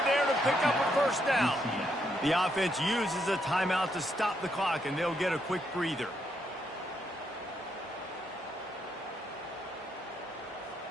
there to pick up a first down. The offense uses a timeout to stop the clock, and they'll get a quick breather.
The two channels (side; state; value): both; normal; correlation 0.77